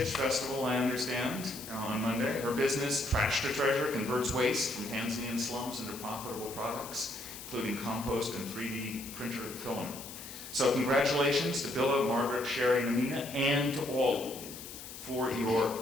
festival, I understand, on Monday. Her business, Trash to Treasure, converts waste from Tanzanian slums into profitable products, including compost and 3D printer filament. So congratulations to Billa, Margaret, Sherry, and Amina, and to all of you for your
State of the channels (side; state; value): left; noise; hiss, 12 dB below the sound